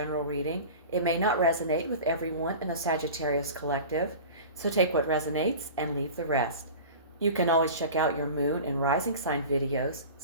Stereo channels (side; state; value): both; inverted; correlation -0.35